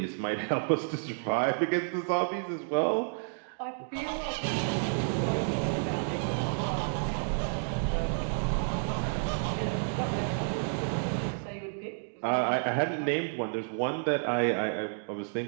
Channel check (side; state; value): left; silent; digital silence